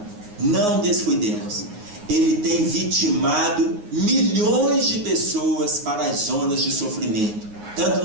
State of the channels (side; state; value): left; late; 9.6 ms